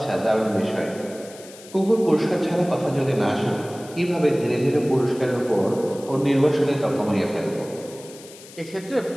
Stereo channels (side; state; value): left; noise; hiss, 19 dB below the sound